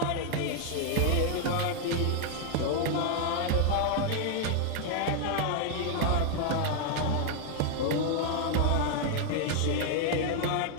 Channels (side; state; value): both; different; correlation 0.00